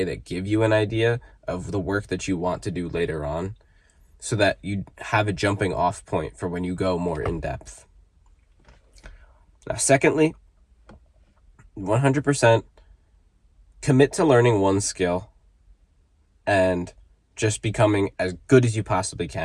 that give you an idea of the work that you want to do later on, so that you have a jumping off point for when you go more in depth. Now, secondly, 100% commit to learning one skill and just becoming as good as you possibly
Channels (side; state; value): both; identical; correlation 1.00